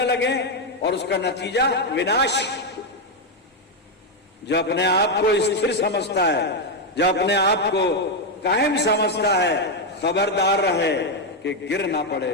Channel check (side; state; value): both; normal; correlation 0.03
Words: लगे, और उसका नतीजा विनाश। जो अपने आप को स्थिर समझता है, जो अपने आप को कायम समझता है, खबरदार रहे कि गिर ना